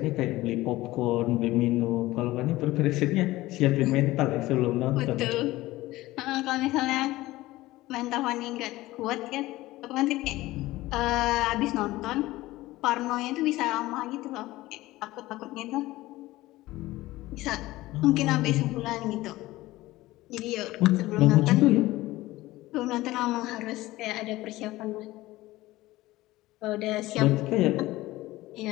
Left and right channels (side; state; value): right; quieter; 17.9 dB